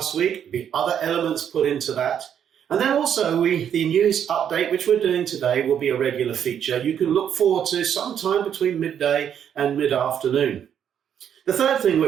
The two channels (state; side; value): quieter; left; 8.9 dB